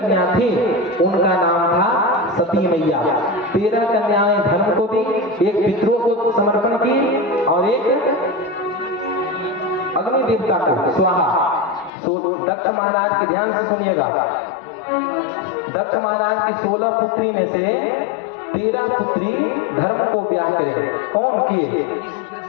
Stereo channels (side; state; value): right; drops out; at 11.9 s